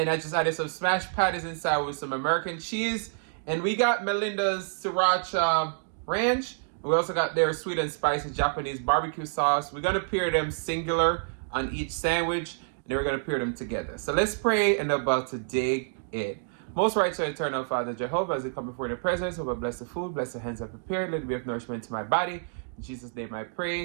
I just added some smashed patties inside with some American cheese. And we got Melindas Sriracha Ranch. We also got their sweet and spicy Japanese barbecue sauce. We're gonna pair them singular on each sandwich, and then we're gonna pair them together. So let's pray and about to dig in. Most righteous eternal Father Jehovah, as we come before the presence, over bless the food, bless the hands I prepared, let it be of nourishment to my body. In Jesus' name I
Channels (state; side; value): silent; left; digital silence